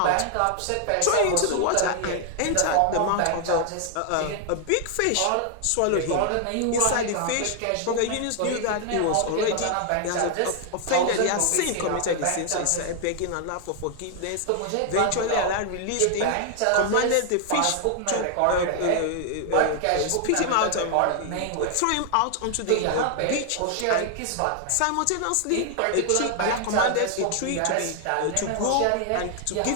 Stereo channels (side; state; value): both; different; correlation 0.00